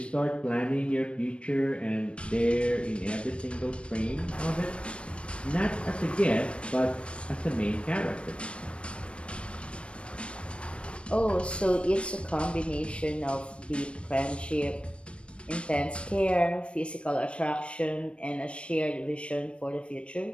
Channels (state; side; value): late; right; 0.059 ms